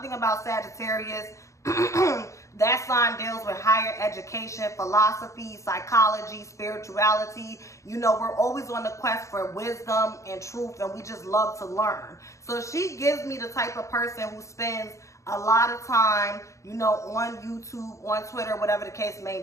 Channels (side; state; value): right; late; 0.15 ms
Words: thing about Sagittarius, that sign deals with higher education, philosophy, psychology, spirituality. You know, we're always on the quest for wisdom and truth, and we just love to learn. So she gives me the type of person who spends a lot of time, you know, on YouTube, on Twitter, whatever the case